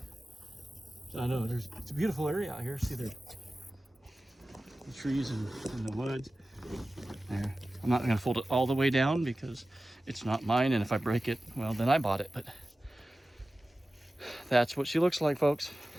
I know it's a beautiful area out here. See the trees and the woods there. I'm not gonna fold it all the way down because it's not mine, and if I break it, well, then I bought it. But that's what she looks like, folks.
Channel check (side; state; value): both; normal; correlation 0.95